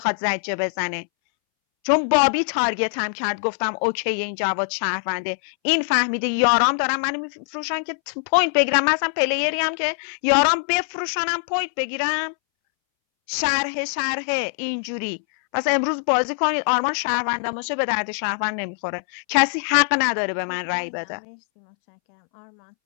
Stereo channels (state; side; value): silent; right; 64 dB below the other